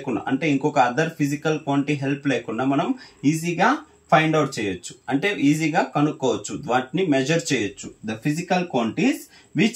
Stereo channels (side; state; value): both; identical; correlation 1.00